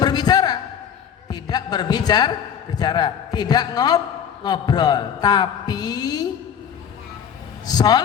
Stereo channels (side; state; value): right; quieter; 8.3 dB